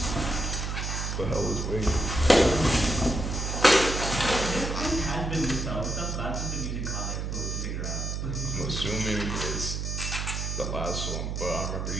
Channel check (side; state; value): right; noise; hum, 3 dB below the sound